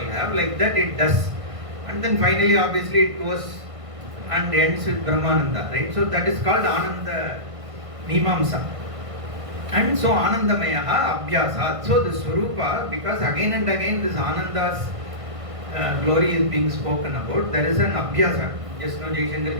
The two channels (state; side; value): late; left; 1.5 ms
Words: have, like that it does. And then finally obviously it goes and ends with Brahmananda, right? So that is called Ananda Mimamsa. And so Anandamayaha Abhyasat. So the Swarupa, because again and again this Ananda's glory is being spoken about, there is an Abhyasa. Just now Jaishankar